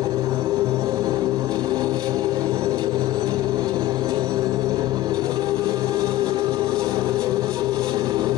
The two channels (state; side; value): quieter; right; 15.4 dB